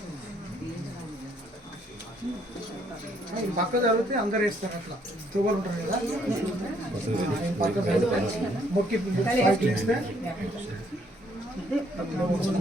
పక్క జరిగితే అందరు వేస్తారు. అట్లా తువ్వలు ఉంటారు కదా, పక్క మొక్కి ఇస్తే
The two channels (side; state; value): both; normal; correlation 0.67